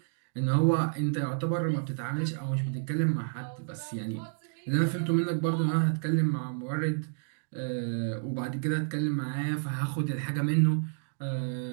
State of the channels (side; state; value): left; silent; digital silence